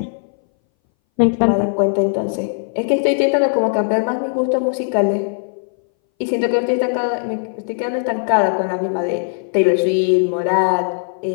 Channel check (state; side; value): silent; right; 62 dB below the other